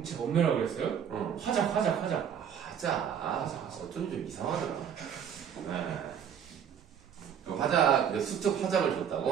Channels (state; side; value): quieter; left; 8.3 dB